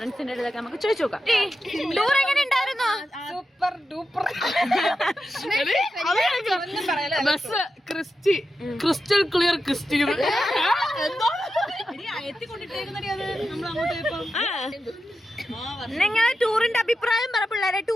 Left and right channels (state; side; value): normal; both; correlation 0.90